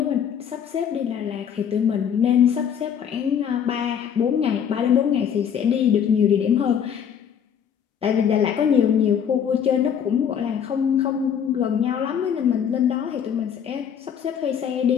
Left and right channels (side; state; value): right; quieter; 8.2 dB